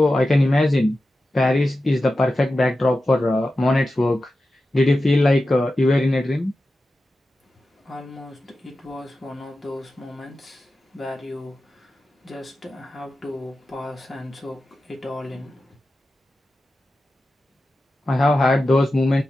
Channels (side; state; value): both; normal; correlation 0.92